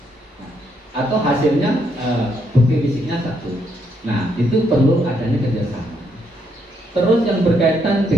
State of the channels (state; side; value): normal; both; correlation 0.75